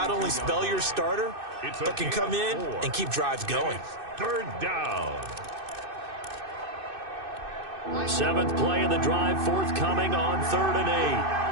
only spell your starter, but can come in and keep drives going. 3rd down. 7th play of the drive, forthcoming on 3rd and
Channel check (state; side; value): late; left; 2.6 ms